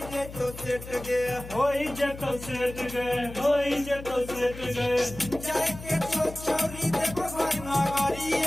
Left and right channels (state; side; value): noise; left; hum, 13 dB below the sound